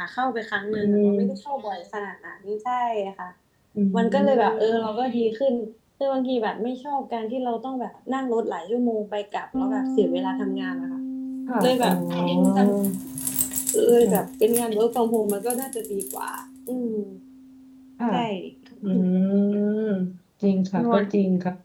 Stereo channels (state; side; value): identical; both; correlation 1.00